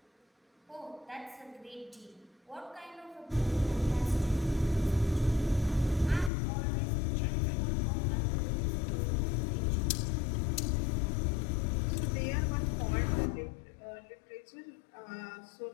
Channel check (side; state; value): right; drops out; at 6.3 s